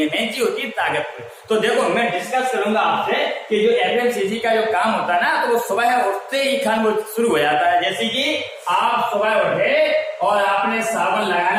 मेन चीज होती है ताकत पे। तो देखो, मैं डिस्कस करूंगा आपसे कि जो एफएमसीजी का जो काम होता है ना, तो वो सुबह उठते ही खान वो शुरू हो जाता है। जैसे कि आप सुबह उठे और आपने साबुन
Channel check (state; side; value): identical; both; correlation 1.00